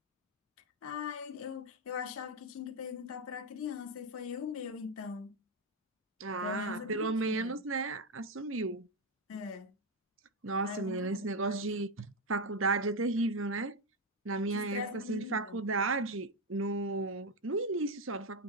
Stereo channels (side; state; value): both; normal; correlation 0.07